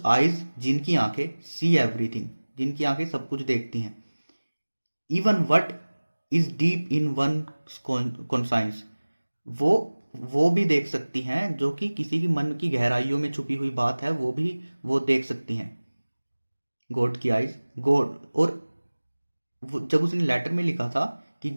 आइज, जिनकी आंखें, सी एवरीथिंग, जिनकी आंखें सब कुछ देखती हैं। Even what is deep in one conscience, वो भी देख सकती हैं जो कि किसी की मन की गहराइयों में छुपी हुई बात है, वो भी वो देख सकती हैं। गॉड की आइज, गॉड। और जब उसने लेटर में लिखा था कि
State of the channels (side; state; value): both; inverted; correlation -1.00